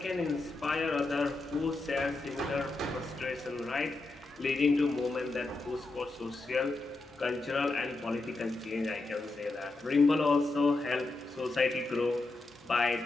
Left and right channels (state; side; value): quieter; right; 3.2 dB